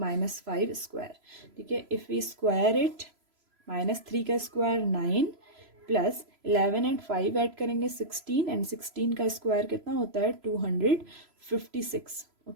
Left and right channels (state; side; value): late; left; 3.0 ms